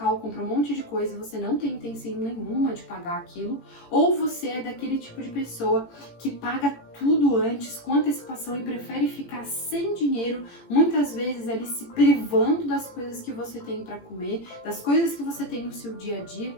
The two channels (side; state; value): right; late; 18 ms